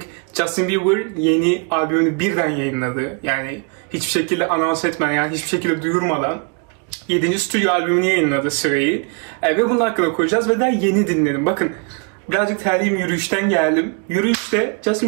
Justin Bieber yeni albümünü birden yayınladı. Yani hiçbir şekilde anons etmeden, yani hiçbir şekilde duyurmadan 7. stüdyo albümünü yayınladı Sway'i. Ve bunun hakkında konuşacağız ve daha yeni dinledim. Bakın, birazcık terliyim, yürüyüşten geldim. Yürüyüşte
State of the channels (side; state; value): left; quieter; 36.1 dB